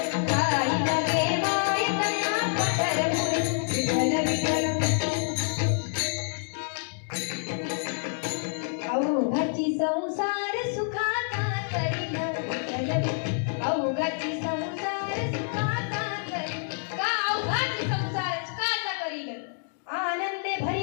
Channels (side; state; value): right; silent; digital silence